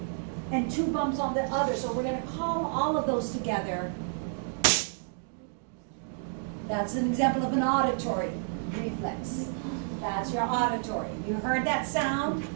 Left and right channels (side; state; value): left; silent; digital silence